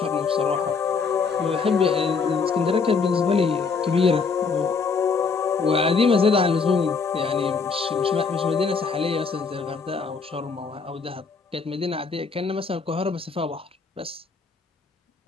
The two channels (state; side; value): quieter; right; 5.0 dB